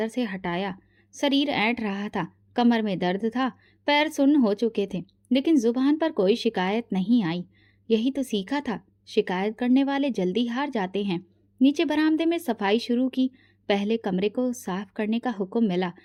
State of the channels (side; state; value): both; identical; correlation 1.00